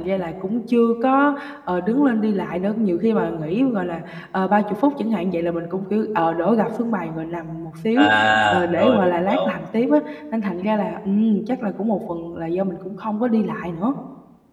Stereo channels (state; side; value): identical; both; correlation 1.00